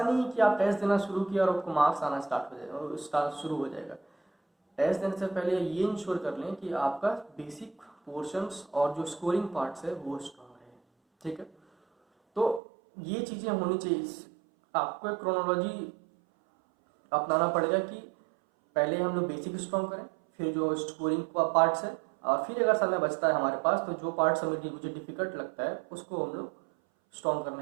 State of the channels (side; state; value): left; drops out; at 12.6 s